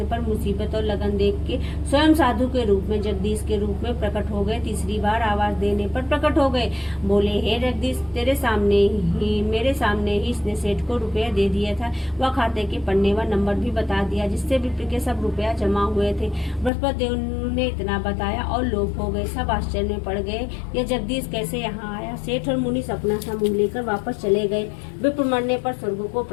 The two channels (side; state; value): right; drops out; at 16.7 s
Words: पर मुसीबत और लगन देख के स्वयं साधु के रूप में जगदीश के रूप में प्रकट हो गए। तीसरी बार आवाज देने पर प्रकट हो गए। बोले, हे जगदीश, तेरे सामने ही मेरे सामने ही इसने सेठ को रुपया दे दिया था। वह खाते के पन्ने व नंबर भी बता दिया जिससे विप्र के सब रुपया जमा हुए थे। बृहस्पति देव ने इतना बताया और लोग हो गए, सब आश्चर्य में पड़ गए, यह जगदीश कैसे यहाँ आया। सेठ और मुनीस अपना समूह लेकर वापस चले गए। विप्र मरने पर स्वर्ग को